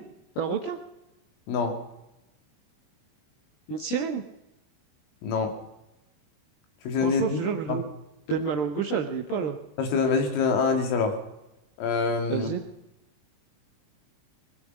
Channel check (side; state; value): right; late; 20 ms